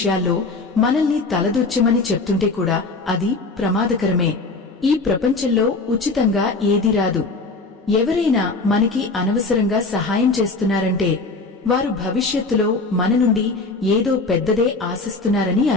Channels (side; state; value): right; quieter; 3.6 dB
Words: మనల్ని తలదొచ్చమని చెప్తుంటే కూడా అది ప్రమాదకరమే. ఈ ప్రపంచంలో ఉచితంగా ఏదీ రాదు. ఎవరైనా మనకి అనవసరంగా సహాయం చేస్తున్నారంటే వారు భవిష్యత్తులో మన నుండి ఏదో పెద్దదే ఆశిస్తున్నారని